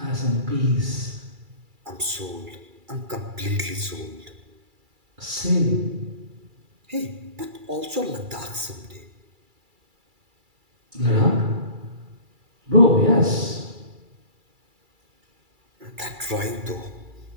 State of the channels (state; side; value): late; left; 2.3 ms